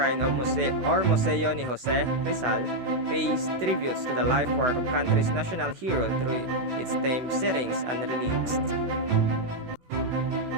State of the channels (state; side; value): late; left; 16 ms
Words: of Museo ni Jose Rizal pays tributes to the life work of country's national hero through its themed settings and relics.